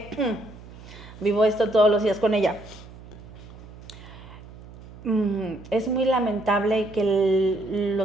vivo esto todos los días con ella. Es muy lamentable que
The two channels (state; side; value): noise; right; hum, 18 dB below the sound